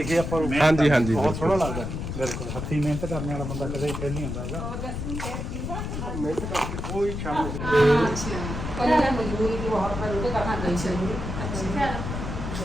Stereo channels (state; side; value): noise; left; rumble, 5 dB below the sound